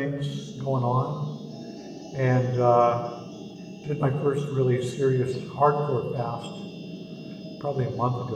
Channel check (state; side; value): identical; both; correlation 1.00